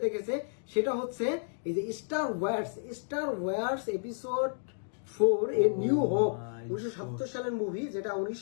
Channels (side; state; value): right; silent; digital silence